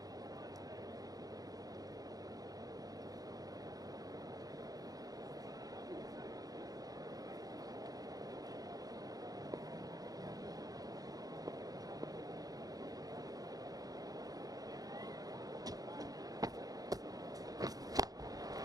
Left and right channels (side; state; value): left; late; 0.18 ms